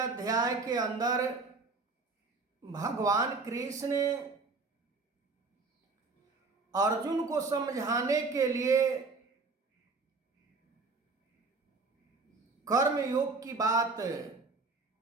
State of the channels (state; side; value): quieter; left; 4.0 dB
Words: के अंदर भगवान कृष्ण अर्जुन को समझाने के लिए कर्म योग की बात